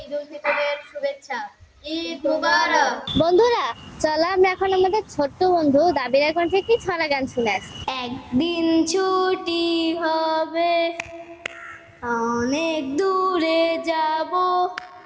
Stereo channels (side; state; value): both; identical; correlation 1.00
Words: ঈদ উল ফিতরের শুভেচ্ছা। ঈদ মুবারক। বন্ধুরা, চলো আমরা এখন আমাদের ছোট্ট বন্ধু দাবিরা কণ্ঠে একটি ছড়া গান শুনে আসি। একদিন ছুটি হবে, অনেক দূরে যাব,